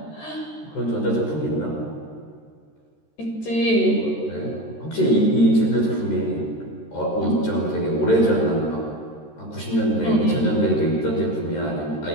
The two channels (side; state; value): right; late; 13 ms